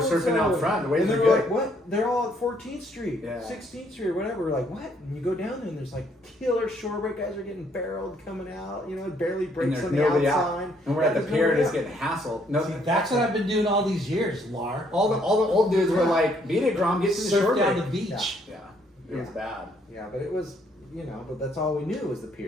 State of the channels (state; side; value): normal; both; correlation 0.68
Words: so-and-so?" surfing out front. The waves and they are were good. like, what? They're all at 14th Street, Yeah. 16th Street, or whatever. We're like, what? And you go down there and there's like killer shorebreak guys are getting barreled coming out, barely And breaks there's on the nobody outside. out. And we're at the There's pier nobody just out. getting hassled. No, See, that's what I've been doing all these years, Lar. all the old dudes were like, beat it, Grom, get to the Surf shore down break. the beach. Yeah. It was Yeah. bad. Yeah, but it was, but that's all we knew was the